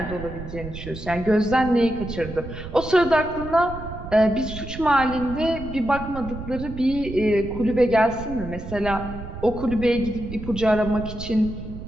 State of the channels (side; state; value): right; noise; rumble, 11 dB below the sound